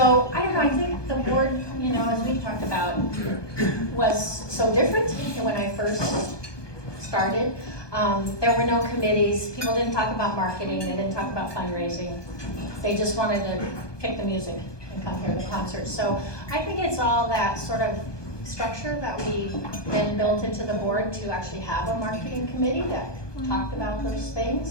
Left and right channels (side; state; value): right; late; 1.2 ms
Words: I don't know, I think the board, as we've talked about, was so different than when I first started. There were no committees, people didn't talk about marketing, they didn't talk about fundraising. They just wanted to pick the music and come hear the concert. So, I think it's all that sort of structure that we then built into the board to actually have a marketing committee that talked about those